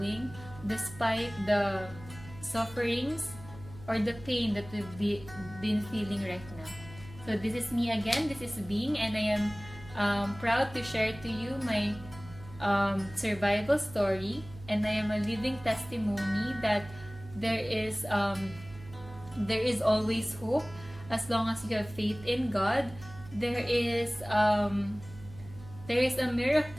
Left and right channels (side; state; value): right; noise; hum, 17 dB below the sound